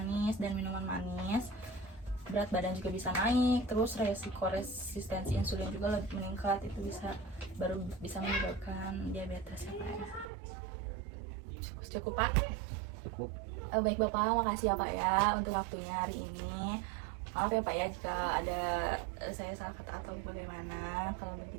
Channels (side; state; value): left; drops out; at 10.3 s